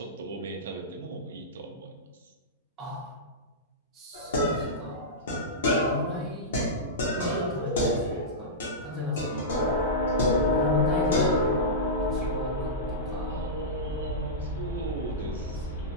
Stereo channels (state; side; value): normal; both; correlation -0.14